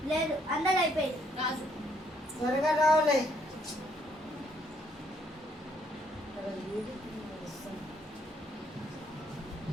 లేదు అందరూ అయిపోయింది. రాజు త్వరగా రావాలి.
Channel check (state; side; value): normal; both; correlation 0.69